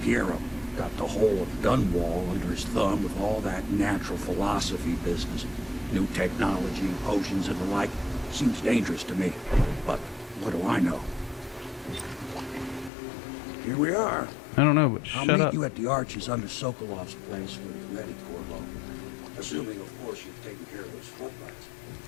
Got the whole of Dunwall under his thumb with all that natural philosophy business. New technology, potions and the like. Seems dangerous to me. But What do I know? Here we are. I don't know, but I'll shut meet up. you at the arches under Sokolov's place when you're ready, Corvo. Assuming, of course, you've taken care of those floodlights.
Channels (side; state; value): right; drops out; at 12.9 s